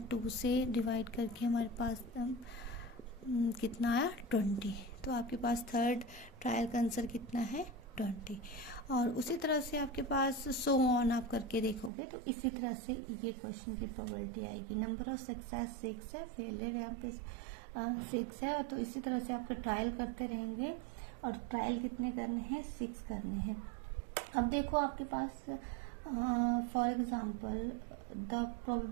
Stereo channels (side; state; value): left; drops out; at 11.9 s